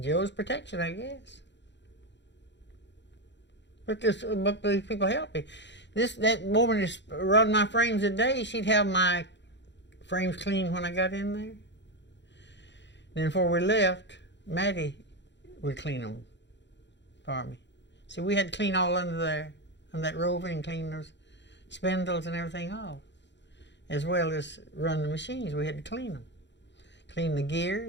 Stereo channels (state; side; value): late; right; 0.52 ms